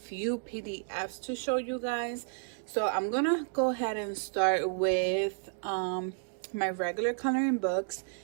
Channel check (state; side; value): silent; left; digital silence